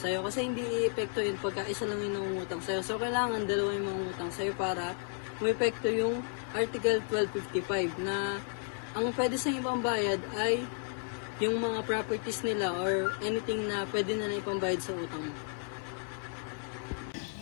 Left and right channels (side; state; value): right; silent; 56 dB below the other